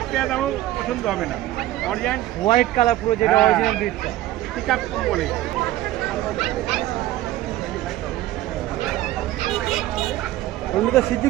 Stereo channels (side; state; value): left; quieter; 15.1 dB